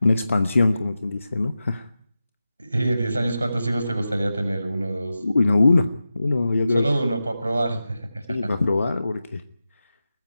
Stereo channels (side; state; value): both; inverted; correlation -0.92